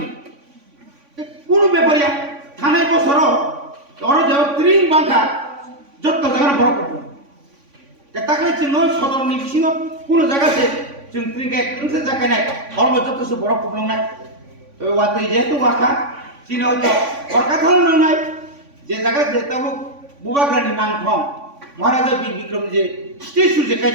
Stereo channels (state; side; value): late; left; 3.5 ms